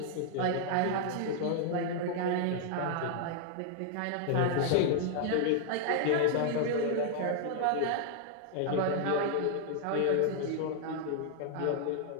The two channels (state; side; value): different; both; correlation -0.01